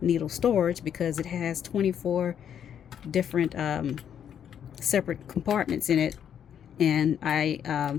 needle storage because it has 24 different separate compartments in it, and I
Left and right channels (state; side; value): quieter; right; 8.9 dB